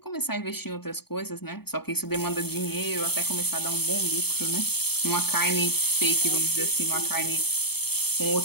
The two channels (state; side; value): late; right; 0.96 ms